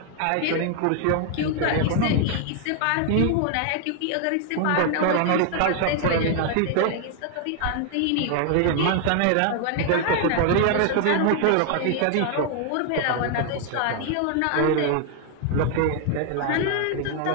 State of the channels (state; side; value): different; both; correlation 0.00